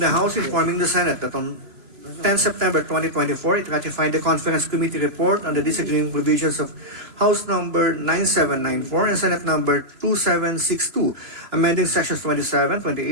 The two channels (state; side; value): late; left; 3.0 ms